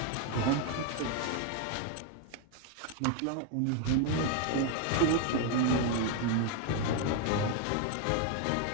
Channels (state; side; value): different; both; correlation 0.01